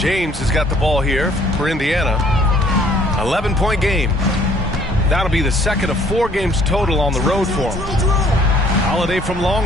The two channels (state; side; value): normal; both; correlation 0.59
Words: has got the ball here for Indiana. 11-point game. That'll be the second of 4 games total on the road for him. Holiday from